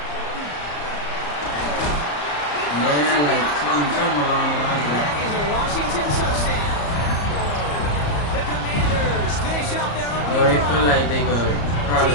Yeah, like something along the lines of that. That is a Washington touchdown. The Commanders finish up their opening Or they drive. feel like they could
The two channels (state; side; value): late; right; 34 ms